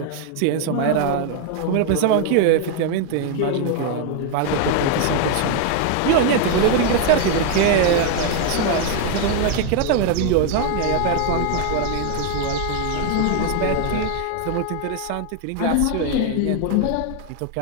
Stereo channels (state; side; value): different; both; correlation 0.00